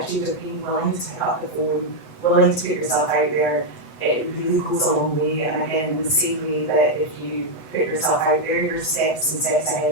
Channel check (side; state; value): right; late; 8.0 ms